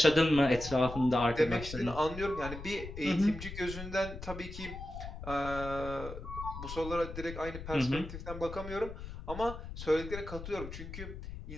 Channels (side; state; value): left; noise; rumble, 10 dB below the sound